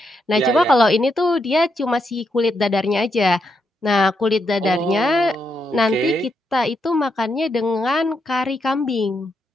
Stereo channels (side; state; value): both; normal; correlation 0.81